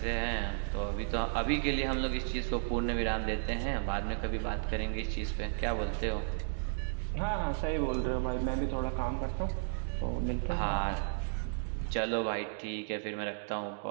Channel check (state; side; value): silent; left; digital silence